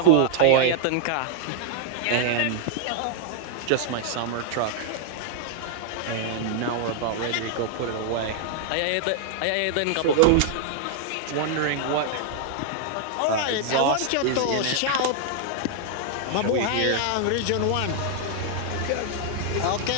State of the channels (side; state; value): both; different; correlation -0.01